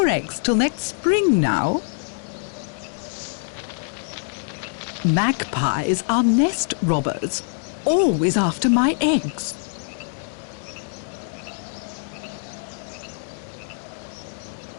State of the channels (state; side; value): silent; right; digital silence